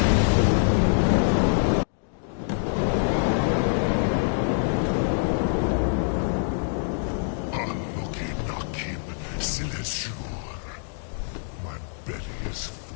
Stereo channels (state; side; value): silent; right; digital silence